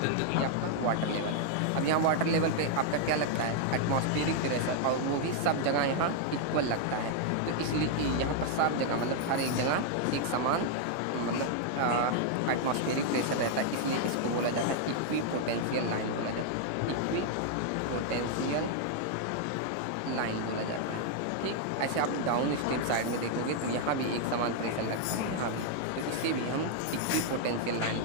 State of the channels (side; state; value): both; different; correlation 0.00